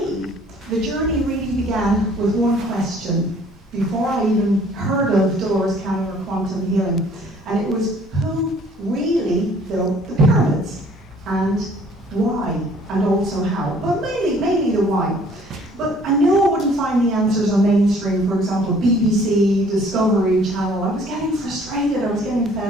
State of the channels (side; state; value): both; normal; correlation 0.56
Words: the journey really began with one question before I even heard of Dolores Cannon or quantum healing. And it was, who really built the pyramids? And why? And also how? But mainly the why. But I knew I wouldn't find the answers on mainstream, for example, BBC, Discovery Channel. I was getting frustrated, I was getting